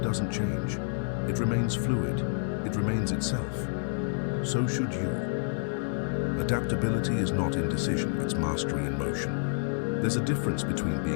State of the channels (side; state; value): right; silent; 59 dB below the other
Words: change. It remains fluid. It remains itself. So should you. Adaptability is not indecision, it's mastery in motion. There's a difference between